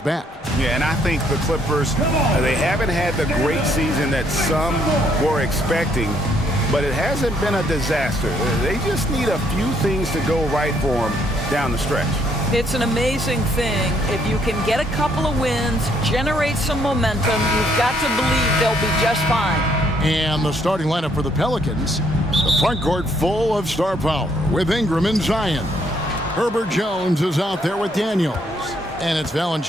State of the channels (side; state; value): both; normal; correlation 0.69